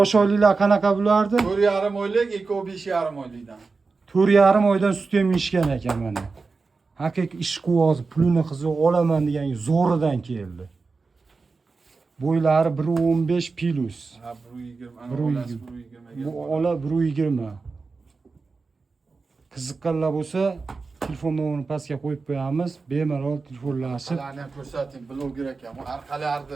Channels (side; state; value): left; quieter; 4.3 dB